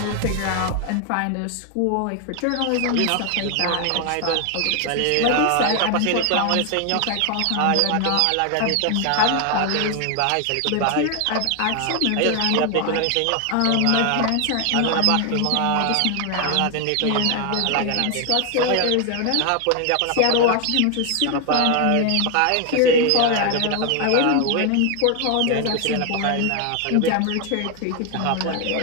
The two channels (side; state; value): both; different; correlation 0.00